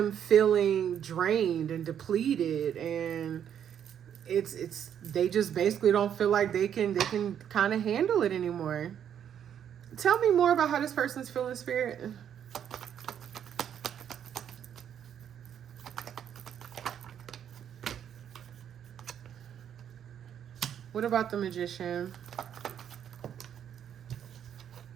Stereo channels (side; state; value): left; quieter; 9.1 dB